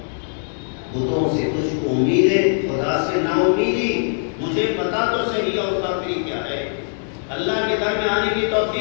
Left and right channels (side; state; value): right; silent; digital silence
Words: بتوں سے تجھ کو امید ہے، خدا سے نا امیدی، مجھے پتا تو صحیح اور کافری کیا ہے۔ اللہ کے در میں آنے کی